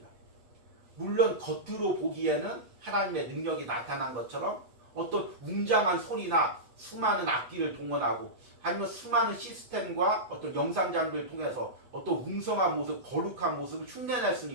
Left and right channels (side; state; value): left; late; 8.2 ms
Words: 물론 겉으로 보기에는 하나님의 능력이 나타난 것처럼 어떤 웅장한 소리나 수많은 악기를 동원하고 아니면 수많은 시스템과 어떤 영상 장비를 통해서 어떤 웅성한 모습, 거룩한 모습을 흉내낼 수는